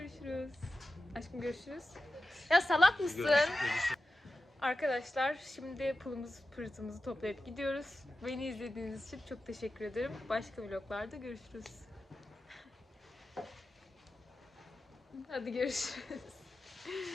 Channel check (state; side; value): normal; both; correlation 0.93